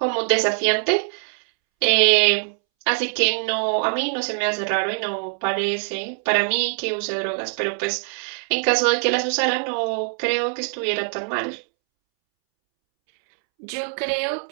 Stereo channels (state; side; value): silent; left; 64 dB below the other